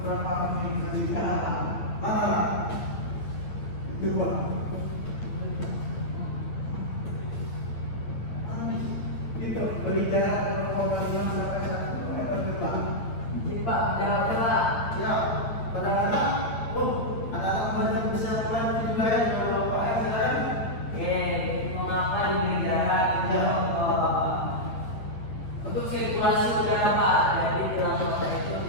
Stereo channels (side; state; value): right; late; 8.9 ms